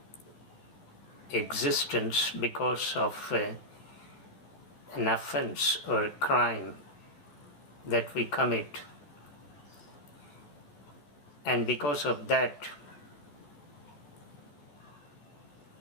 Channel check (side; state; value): right; late; 14 ms